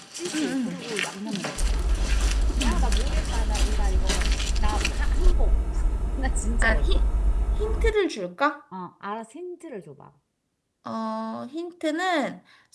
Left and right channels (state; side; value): identical; both; correlation 1.00